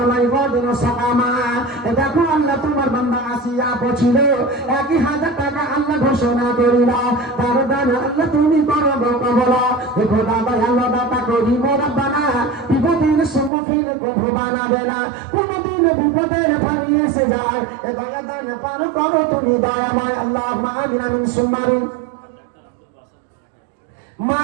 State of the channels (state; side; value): drops out; left; at 13.5 s